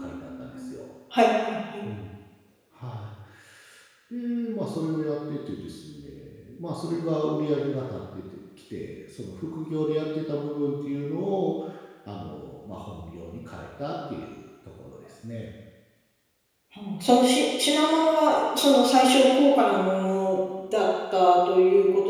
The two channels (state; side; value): identical; both; correlation 1.00